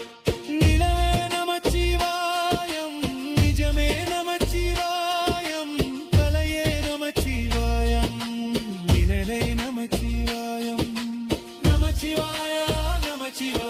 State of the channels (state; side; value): identical; both; correlation 1.00